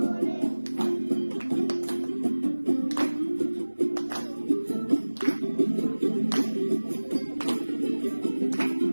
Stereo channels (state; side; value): inverted; both; correlation -1.00